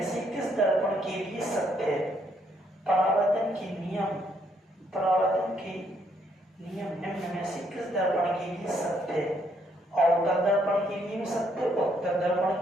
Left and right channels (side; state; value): both; normal; correlation 0.71